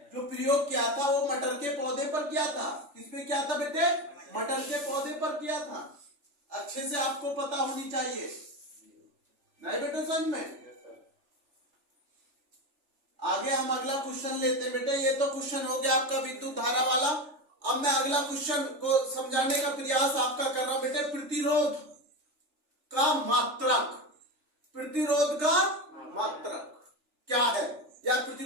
जो प्रयोग किया था वो मटर के पौधे पर किया था। किस पे किया था बेटे? मटर के पौधे पर किया था। अच्छे से आपको पता होनी चाहिए, नहीं बेटे समझ में। आगे हम अगला क्वेश्चन लेते हैं बेटे। ये तो क्वेश्चन हो गया आपका विद्युत धारा वाला। अब मैं अगला क्वेश्चन को समझाने का प्रयास आपका कर रहा हूं बेटे। प्रतिरोध का मात्रक। प्रतिरोध का मात्रक क्या है, या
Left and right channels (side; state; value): left; late; 3.4 ms